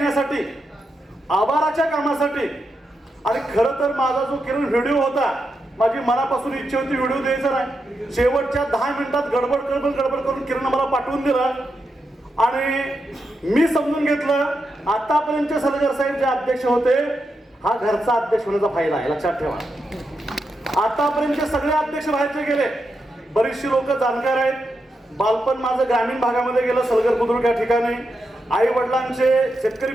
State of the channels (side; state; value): both; normal; correlation 0.85